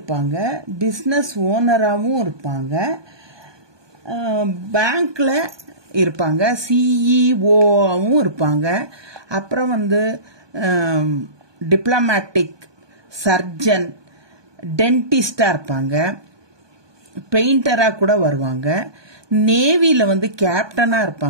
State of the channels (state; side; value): late; left; 1.2 ms